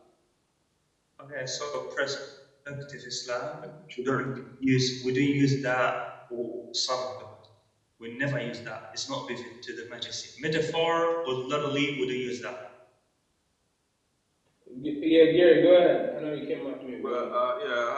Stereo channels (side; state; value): both; identical; correlation 1.00